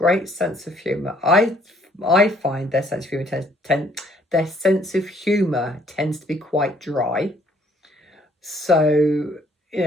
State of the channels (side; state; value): both; normal; correlation 0.63